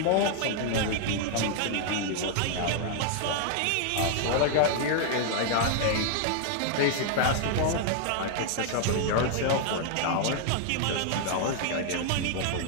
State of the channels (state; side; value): different; both; correlation 0.00